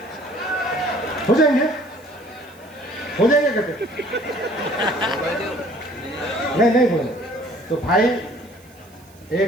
हो जाएंगे? हो जाएंगे कहते? नहीं बोले। तो भाई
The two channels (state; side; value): noise; right; hiss, 28 dB below the sound